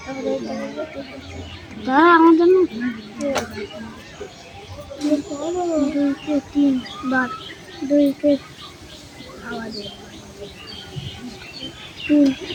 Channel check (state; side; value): identical; both; correlation 1.00